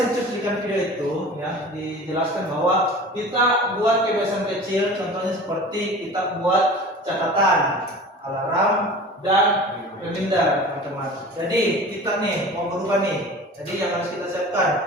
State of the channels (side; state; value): both; normal; correlation 0.39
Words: cuplikan video itu ya dijelaskan bahwa kita buat kebiasaan kecil, contohnya seperti kita buat catatan, alarm dan reminder, teman-teman. Jadi kita nih mau berubah nih. Jadi yang harus kita